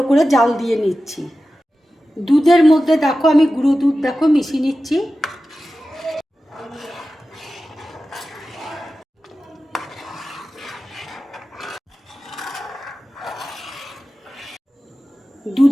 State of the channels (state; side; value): normal; both; correlation 0.94